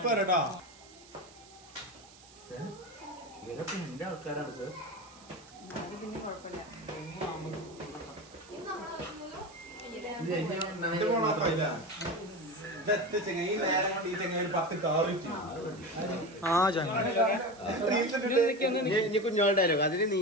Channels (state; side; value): noise; right; hiss, 22 dB below the sound